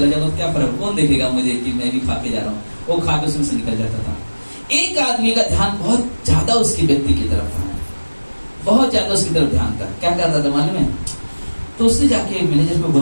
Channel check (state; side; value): inverted; both; correlation -1.00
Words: जाता हूँ, क्या फर्क, कौन देखेगा मुझे कि मैं भी खा के जा रहा हूँ। वो खा के उसमें से निकल जाता था। एक आदमी का ध्यान बहुत ज्यादा उसके व्यक्ति की तरफ था, बहुत ज्यादा उसकी तरफ ध्यान था। क्या करता था मालूम है, तो उसने जाके मैनेजर को